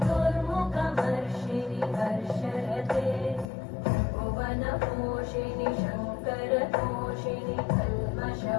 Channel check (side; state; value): right; drops out; at 3.5 s